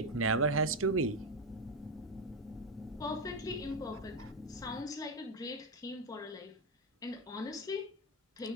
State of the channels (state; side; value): normal; both; correlation 0.09